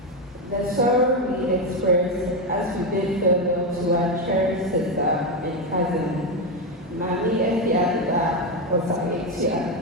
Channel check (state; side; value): normal; both; correlation 0.09